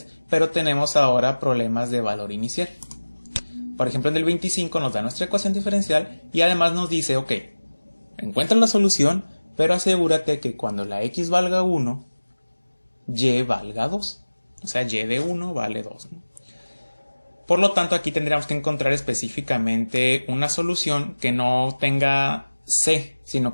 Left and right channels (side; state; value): both; inverted; correlation -1.00